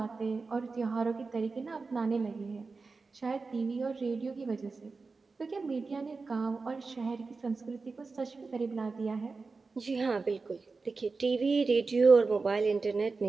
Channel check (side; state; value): left; quieter; 4.2 dB